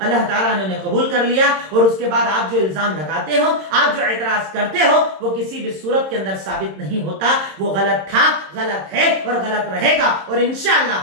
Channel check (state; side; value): late; left; 26 ms